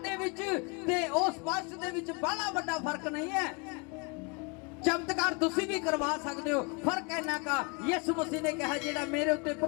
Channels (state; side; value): quieter; right; 31.2 dB